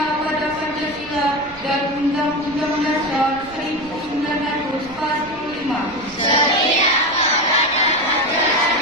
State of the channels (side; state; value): right; noise; rumble, 22 dB below the sound